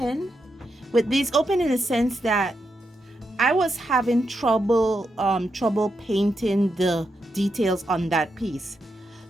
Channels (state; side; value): normal; both; correlation 0.84